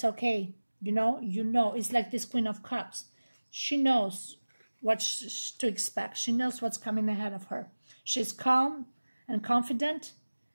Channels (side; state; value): both; inverted; correlation -1.00